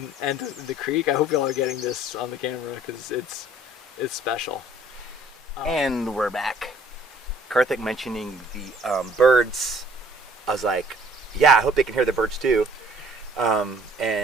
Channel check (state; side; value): normal; both; correlation 0.56